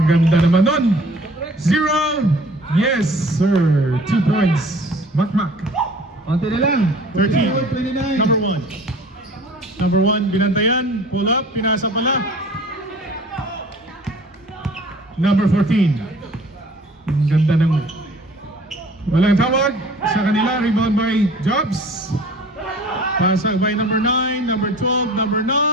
ganda naman nun. 0. Yes, sir. 2 points. Makmak. Onti na lang. 13. 29. Number 1. Number 1, binantayan. Pull up. Pinasa pala. Number 14. Ang ganda ng walang tawag sa kanila. Rebound by Jobs. Pasag by number 9, number 12, number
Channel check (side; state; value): both; normal; correlation 0.48